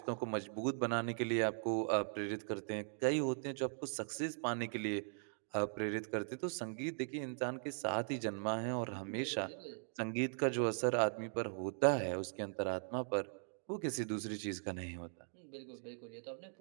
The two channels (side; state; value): left; silent; digital silence